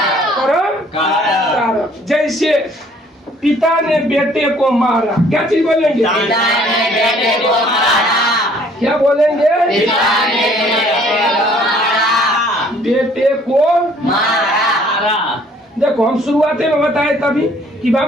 कर्म कारक। जैसे पिता ने बेटे को मारा, क्या चीज बोलेंगे? क्या बोलेंगे? बेटे को मारा। देखो हम शुरुआत में बताए तभी कि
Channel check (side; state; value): both; normal; correlation 0.59